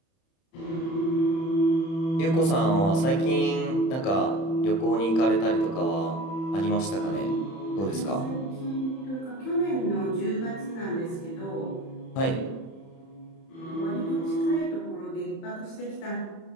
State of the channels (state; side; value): late; right; 31 ms